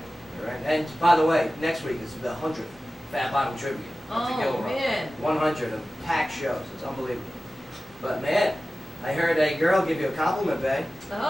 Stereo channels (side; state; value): both; normal; correlation 0.96